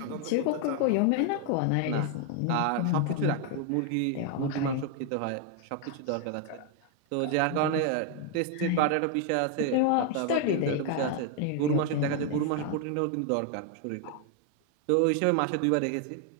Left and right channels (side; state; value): both; different; correlation 0.01